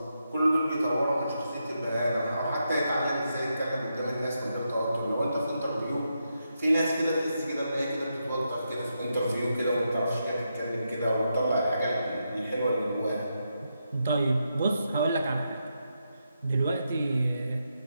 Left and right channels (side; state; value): both; inverted; correlation -0.84